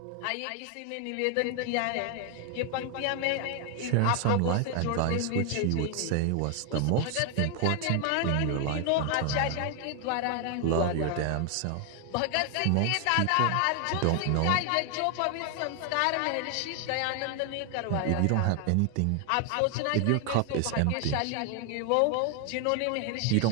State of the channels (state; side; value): different; both; correlation 0.00